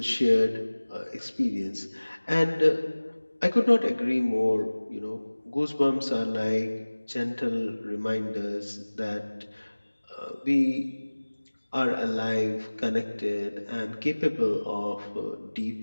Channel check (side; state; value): both; inverted; correlation -1.00